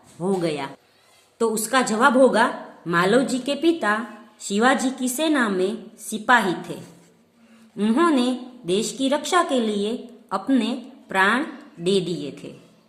हो गया? तो उसका जवाब होगा, मालवजी के पिता शिवाजी की सेना में सिपाही थे। उन्होंने देश की रक्षा के लिए अपने प्राण दे दिए थे।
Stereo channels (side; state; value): both; identical; correlation 1.00